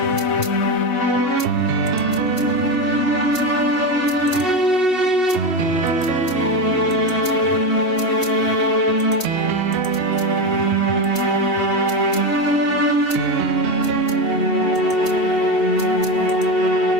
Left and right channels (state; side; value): late; right; 2.6 ms